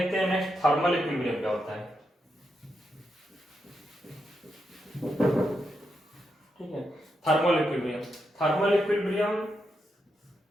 हैं नेक्स्ट थर्मल इक्विलिब्रियम क्या होता है। ठीक है, thermal equilibrium thermal equilibrium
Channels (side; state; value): both; normal; correlation 0.84